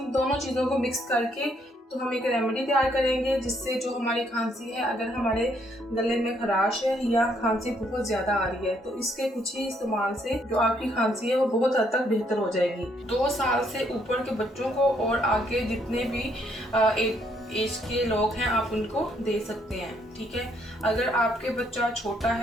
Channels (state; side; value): normal; both; correlation 0.70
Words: दोनों चीज़ों को मिक्स करके तो हम एक रेमेडी तैयार करेंगे जिससे जो हमारी खांसी है, अगर हमारे गले में खराश है या खांसी बहुत ज़्यादा आ रही है, तो इसके कुछ ही इस्तेमाल से जो आपकी खांसी है वो बहुत हद तक बेहतर हो जाएगी। 2 साल से ऊपर के बच्चों को और आगे जितने भी एज के लोग हैं आप उनको दे सकते हैं। ठीक है, अगर आपके बच्चा छोटा